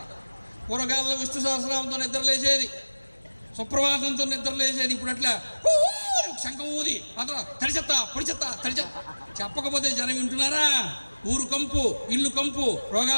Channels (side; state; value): both; inverted; correlation -1.00